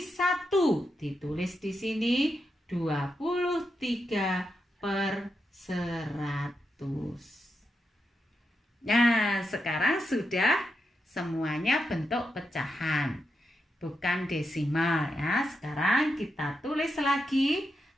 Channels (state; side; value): normal; both; correlation 0.86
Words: 1 ditulis di sini 23/100. Nah, sekarang sudah semuanya bentuk pecahan. Bukan desimal ya. Sekarang kita tulis lagi